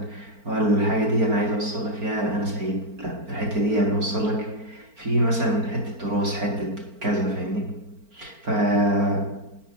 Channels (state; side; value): late; left; 4.4 ms